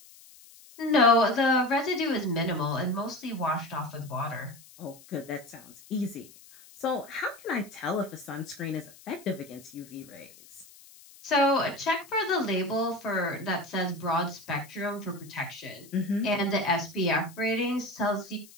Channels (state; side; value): noise; left; hiss, 22 dB below the sound